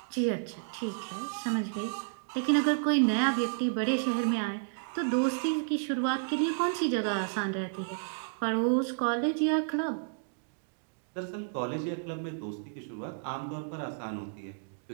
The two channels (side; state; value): left; silent; digital silence